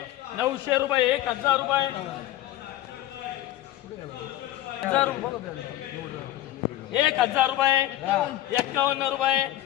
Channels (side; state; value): right; quieter; 14.0 dB